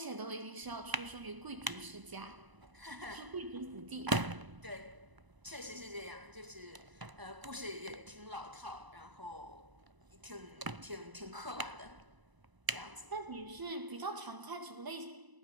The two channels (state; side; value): late; left; 1.0 ms